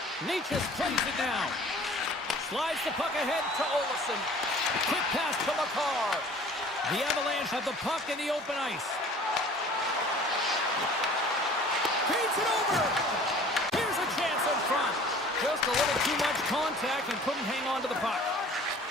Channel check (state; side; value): normal; both; correlation 0.48